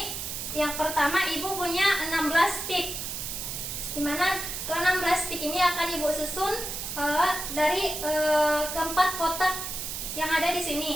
yang pertama Ibu punya 16 tik. Dimana ke-16 tik ini akan Ibu susun dari keempat kotak yang ada di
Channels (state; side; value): noise; right; hiss, 5 dB below the sound